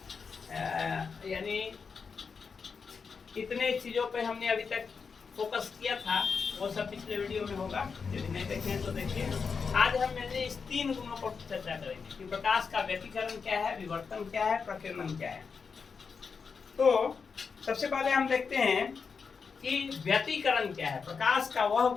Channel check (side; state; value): right; quieter; 5.5 dB